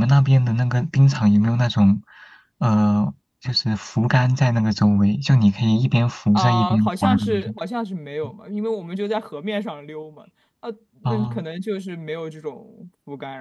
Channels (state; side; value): identical; both; correlation 1.00